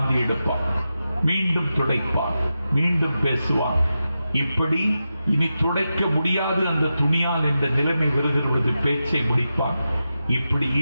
எடுப்பான். மீண்டும் துடைப்பான். மீண்டும் பேசுவான். இப்படி இனி துடைக்க முடியாது அந்த துணியால் என்ற நிலைமை வருகிறது. பேச்சை முடிப்பான். இப்படி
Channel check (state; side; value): inverted; both; correlation -0.90